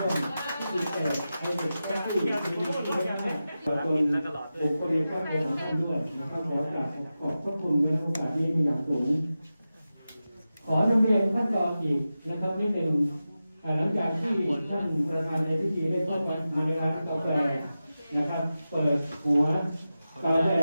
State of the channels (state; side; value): inverted; both; correlation -0.93